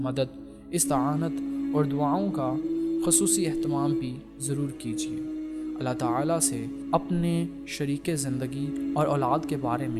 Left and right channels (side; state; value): both; identical; correlation 1.00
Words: مدد، استعانت اور دعاؤں کا خصوصی اہتمام بھی ضرور کیجیے۔ اللہ تعالیٰ سے اپنے شریک زندگی اور اولاد کے بارے